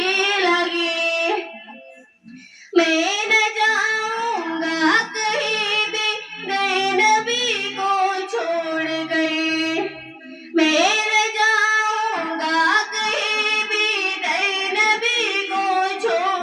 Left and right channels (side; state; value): both; identical; correlation 1.00